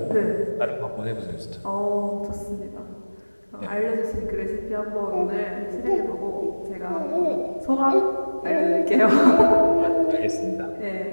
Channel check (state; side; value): inverted; both; correlation -1.00